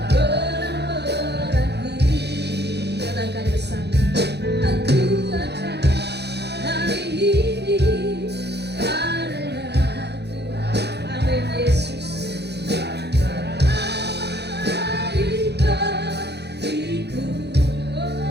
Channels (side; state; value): left; late; 0.49 ms